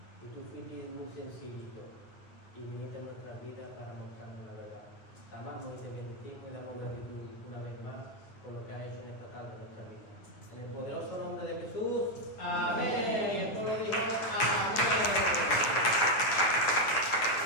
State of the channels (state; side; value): late; right; 9.3 ms